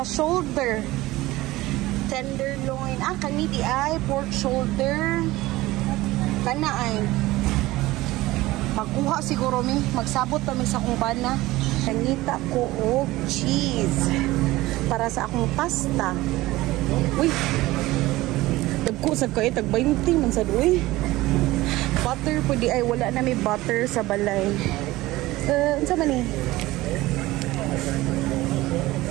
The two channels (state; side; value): quieter; left; 18.4 dB